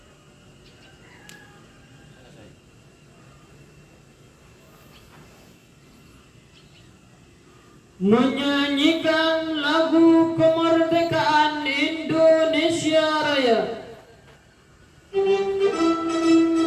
Menyanyikan lagu kemerdekaan Indonesia Raya.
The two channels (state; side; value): identical; both; correlation 1.00